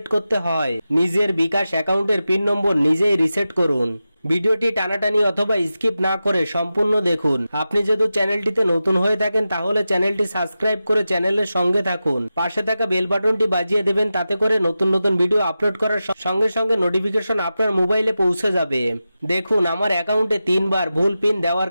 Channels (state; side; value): inverted; both; correlation -0.92